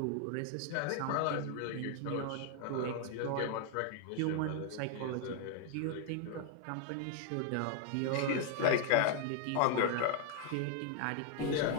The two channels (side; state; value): both; different; correlation 0.00